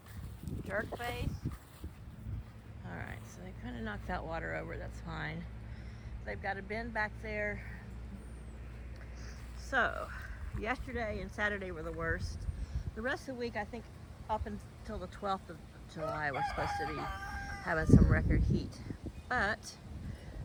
jerk face. Alright, so they kind of knocked that water over. That's fine. They've got a bin back there. So, yesterday and Saturday were the worst. The rest of the week, I think up until the 12th of July, we're supposed to be having some record heat. But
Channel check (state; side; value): identical; both; correlation 1.00